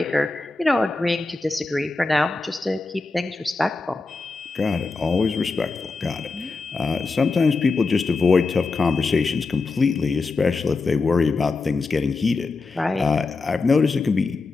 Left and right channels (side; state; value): right; quieter; 3.9 dB